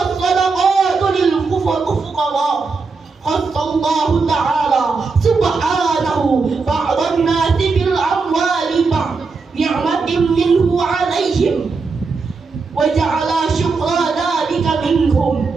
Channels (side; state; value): left; quieter; 4.5 dB